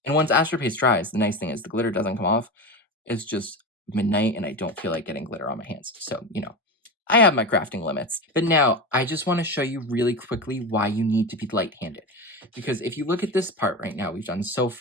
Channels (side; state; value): both; normal; correlation 0.23